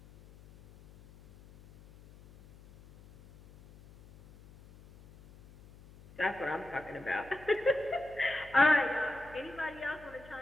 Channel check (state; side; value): noise; left; hum, 22 dB below the sound